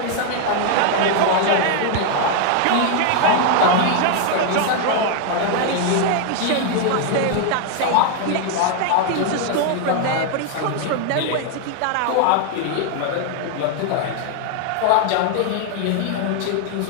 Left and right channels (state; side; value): different; both; correlation 0.00